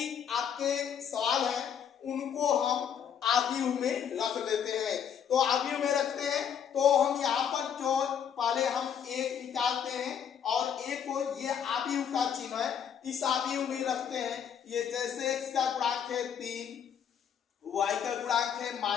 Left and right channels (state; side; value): quieter; right; 8.2 dB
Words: आपके सवाल है उनको हम आव्यूह में रख लेते हैं। तो आव्यूह में रखते हैं तो हम यहाँ पर जो पहले हम एक निकालते हैं और एक को ये आव्यूह का चिन्ह है, इस आव्यूह में रखते हैं। ये जैसे x का गुणांक है 3, y का गुणांक है